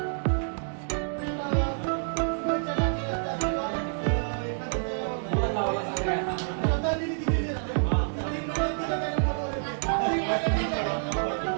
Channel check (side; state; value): left; silent; digital silence